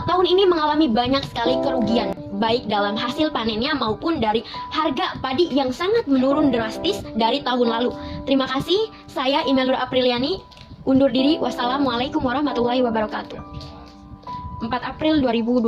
tahun ini mengalami banyak sekali kerugian, baik dalam hasil panennya maupun dari harga padi yang sangat menurun drastis dari tahun lalu. Terima kasih, saya Imelda Apriliani undur diri. Wassalamualaikum warahmatullahi wabarakatuh. 4 April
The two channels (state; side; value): identical; both; correlation 1.00